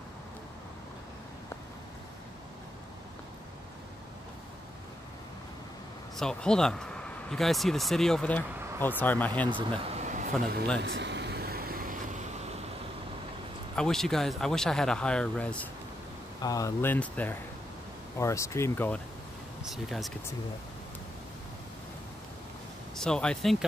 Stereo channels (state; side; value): normal; both; correlation 0.81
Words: So, hold on. You guys see the city over there? Oh, sorry, my hand's in the front of the lens. I wish I had a higher res lens there, or a stream going, so you guys could see that. So I think